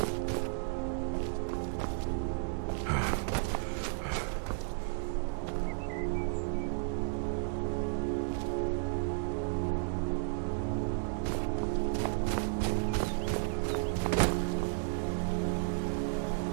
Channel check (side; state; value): left; silent; digital silence